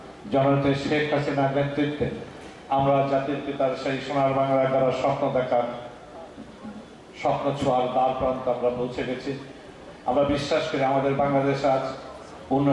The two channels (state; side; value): identical; both; correlation 1.00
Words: জননেত্রী শেখ হাসিনার নেতৃত্বে আমরা জাতির পিতার সেই সোনার বাংলা করার স্বপ্ন দেখার, স্বপ্ন ছোঁয়ার দ্বার প্রান্তে আমরা পৌঁছে গেছি। আমরা বিশ্বাস করি আমাদের বাংলাদেশ আজ